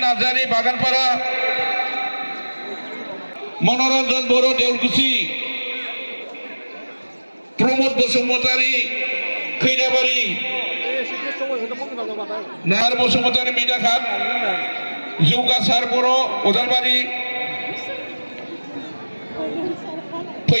नार्जारि बागानपारा मनरन्जन बर' देउलकुसि प्रमद बसुमतारि खैराबारि नार बसुमतारि मेधाघाट जौगासार बर' उदालबारि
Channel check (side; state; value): both; inverted; correlation -1.00